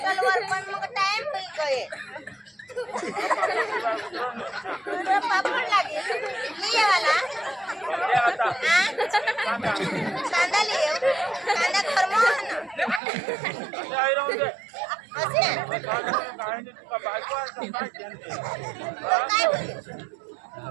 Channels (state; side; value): drops out; left; at 13.0 s